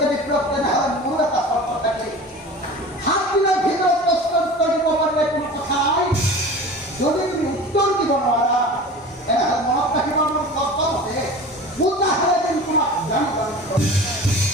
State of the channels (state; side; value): normal; both; correlation 0.37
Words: বিপ্লৱ তেনেহ'লে মোৰ এটা চৰ্ত থাকে 7 দিনৰ ভিতৰত প্ৰশ্ন উত্তৰ দিব পাৰিলে কোনো কথা নাই যদি তুমি উত্তৰ দিব নোৱাৰা তেনেহ'লে মনত ৰাখিব মোৰ চৰ্ত মতে পূজা হ'লে যেন তোমাক